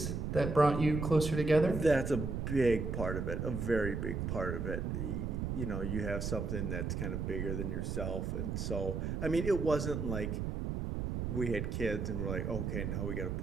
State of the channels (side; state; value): right; noise; rumble, 2 dB below the sound